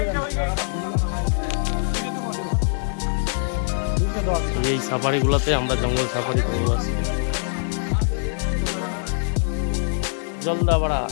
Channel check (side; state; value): right; silent; digital silence